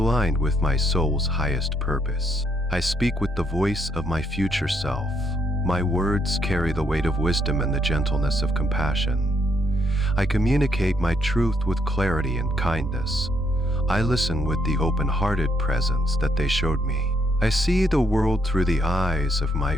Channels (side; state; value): both; normal; correlation 0.73